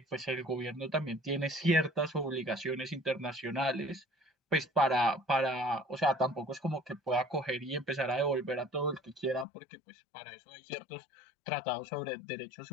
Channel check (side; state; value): right; drops out; at 9.5 s